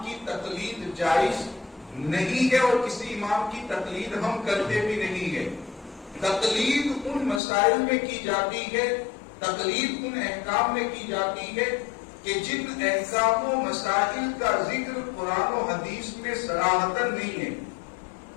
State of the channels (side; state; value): right; drops out; at 7.4 s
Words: کی تقلید جائز نہیں ہے، اور کسی امام کی تقلید ہم کرتے بھی نہیں ہے۔ تقلید ان مسائل میں کی جاتی ہے، تقلید ان احکام میں کی جاتی ہے کہ جن احکام و مسائل کا ذکر قرآن و حدیث میں صراحتاً نہیں ہے،